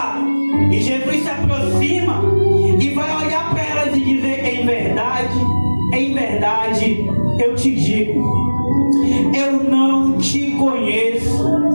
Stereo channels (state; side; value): inverted; both; correlation -1.00